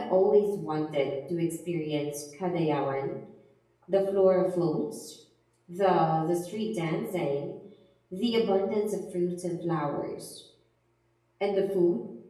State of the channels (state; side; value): identical; both; correlation 1.00